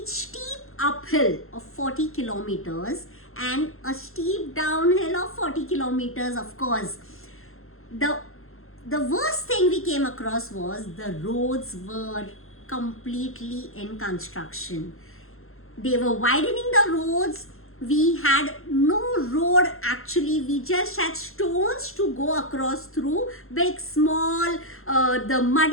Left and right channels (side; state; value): right; late; 0.61 ms